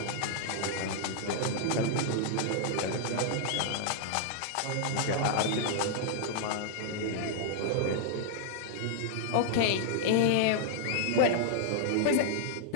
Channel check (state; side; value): different; both; correlation -0.01